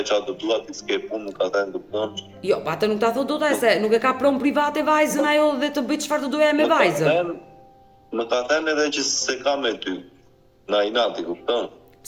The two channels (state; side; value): identical; both; correlation 1.00